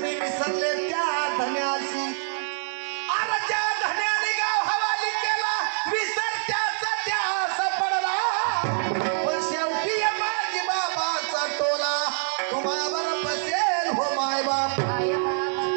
विसरले त्या धन्यासी अरे ज्या धन्याने गाव हवाली केला विसर त्याचा त्यास पडला पण शेवटी माझी बाबाचा टोला तुम्हावर बसेल हो माय बाप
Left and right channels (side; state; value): left; silent; 58 dB below the other